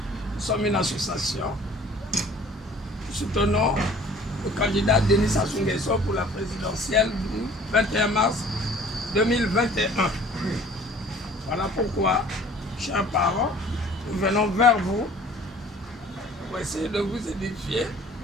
Nous sommes une association. Nous soutenons le candidat Denis Sassou Nguesso pour la présidentielle du 21 mars 2021. Voilà pourquoi, chers parents, nous venons vers vous pour essayer de vous édifier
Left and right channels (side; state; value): both; normal; correlation 0.51